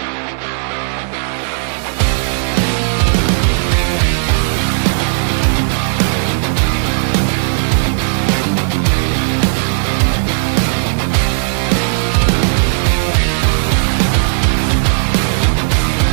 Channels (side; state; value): left; silent; digital silence